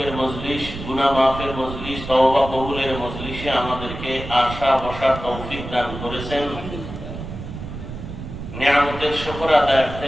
মজলিস গুনাহ মাফের মজলিস তওবা কবুলের মজলিসে আমাদেরকে আসা বসার তৌফিক দান করেছেন। নিয়ামতের শুকর আদায়ার্থে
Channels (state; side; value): noise; right; rumble, 10 dB below the sound